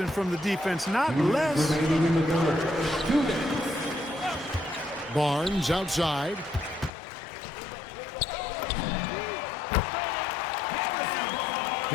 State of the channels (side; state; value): right; drops out; at 6.9 s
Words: from the defense, not less. Remaining in the third. 2 minutes. Barnes outside.